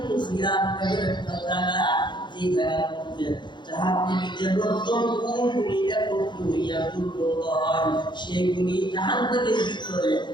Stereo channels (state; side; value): late; right; 0.22 ms